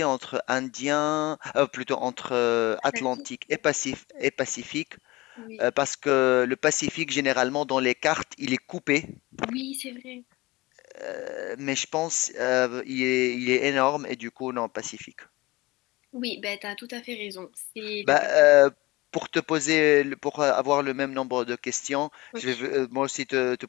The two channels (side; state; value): right; quieter; 21.2 dB